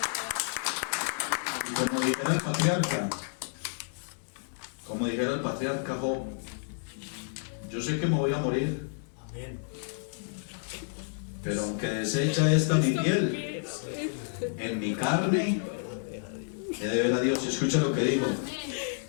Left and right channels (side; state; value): right; silent; digital silence